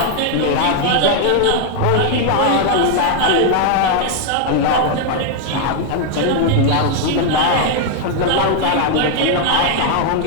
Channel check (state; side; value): different; both; correlation 0.00